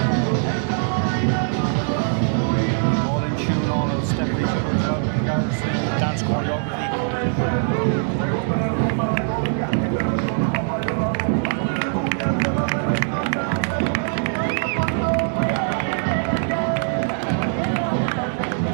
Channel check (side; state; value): left; silent; digital silence